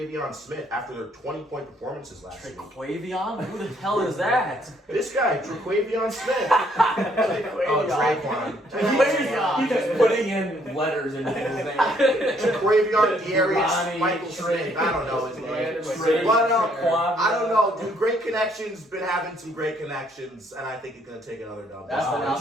Smith after their 20-point performances last week. Traquavion? Who the hell is that? This guy, Traquavion Smith. Oh, Traquan. He's just putting in letters into his name. Traquavion Darius Ronnie, Michael Smith. I don't know his name. Trey, But, Quad- I don't know, dude. Great Connections been having some great connections, and I think he's gonna take another dub. That's the Wow. Did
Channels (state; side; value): normal; both; correlation 0.67